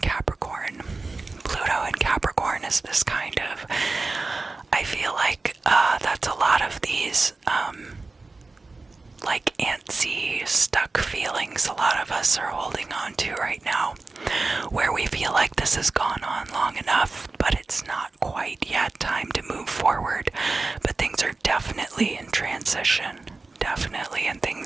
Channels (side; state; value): left; quieter; 3.6 dB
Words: Pluto in Capricorn is this kind of, I feel like that's a lot of these like antsy, stuck feelings a lot of us are holding on to right now, where we feel like this has gone on long enough, but it's not quite yet time to move forward. But things are definitely in transition, definitely, and